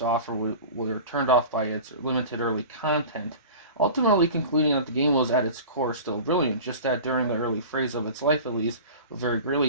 offer were turned off by its limited early content, ultimately concluding that the game was at its core still brilliant, just that during the early phase of its life at least, was very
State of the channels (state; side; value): inverted; both; correlation -0.36